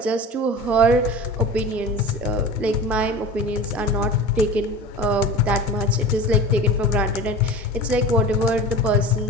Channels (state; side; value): normal; both; correlation 0.34